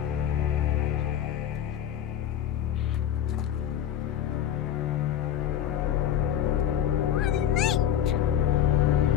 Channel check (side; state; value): right; quieter; 10.3 dB